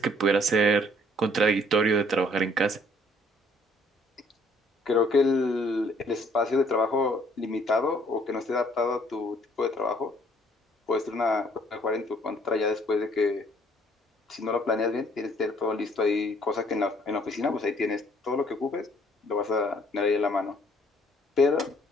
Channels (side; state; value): both; normal; correlation 0.62